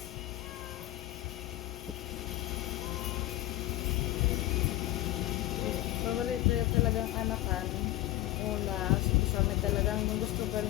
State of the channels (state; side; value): quieter; right; 16.0 dB